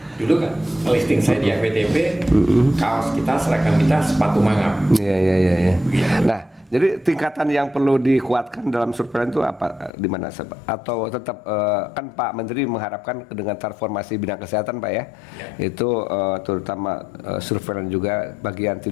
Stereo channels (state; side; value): drops out; right; at 9.9 s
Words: dulu kan listing saya di FWTP, kaos kita, seragam kita sepatu mangap. Iya. Nah, Jadi tingkatan yang perlu dikuatkan dalam surveillance itu apa? Di mana? Atau tetap kan Pak Menteri mengharapkan dengan transformasi bidang kesehatan Pak ya, itu terutama surveillance juga bagian